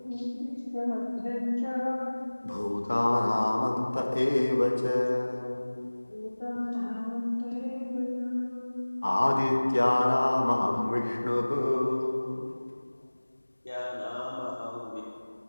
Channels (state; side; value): inverted; both; correlation -1.00